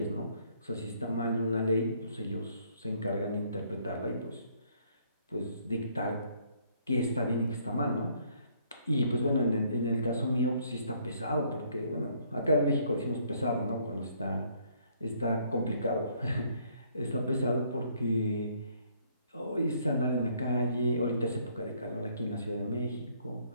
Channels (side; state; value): both; inverted; correlation -0.66